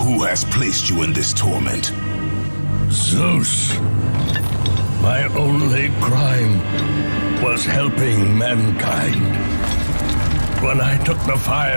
Who has placed you in this torment? Zeus. My only crime was helping mankind. When I took the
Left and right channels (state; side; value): inverted; both; correlation -1.00